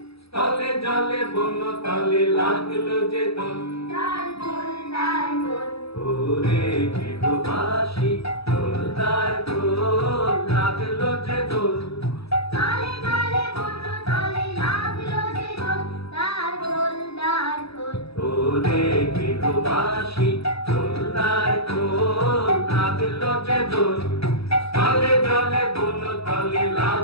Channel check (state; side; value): late; right; 0.77 ms